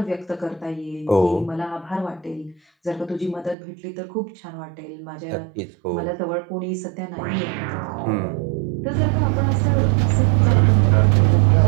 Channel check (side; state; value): left; drops out; at 3.6 s